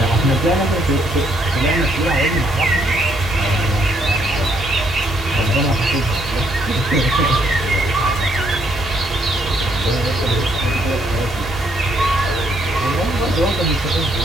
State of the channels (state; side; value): normal; both; correlation 0.71